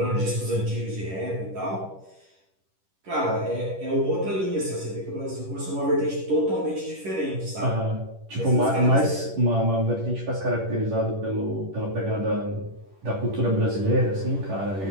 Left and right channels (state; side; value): late; left; 10 ms